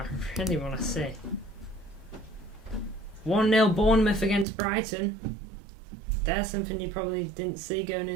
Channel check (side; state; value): left; drops out; at 4.5 s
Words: really want to see. 1-0 Bournemouth against Brighton. There's something you probably didn't see going